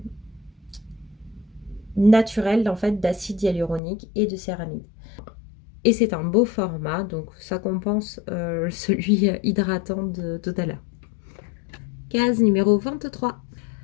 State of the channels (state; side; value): drops out; right; at 3.8 s